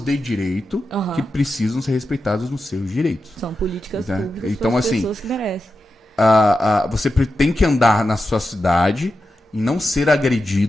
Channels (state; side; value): normal; both; correlation 0.90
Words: direito que precisam ser respeitadas nos seus direitos. São políticas públicas então, para as assim, pessoas que merecem. Você tem que andar na sua cidade e não ser